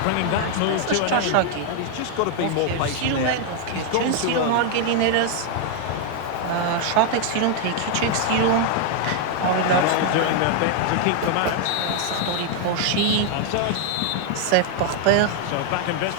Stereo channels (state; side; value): different; both; correlation 0.00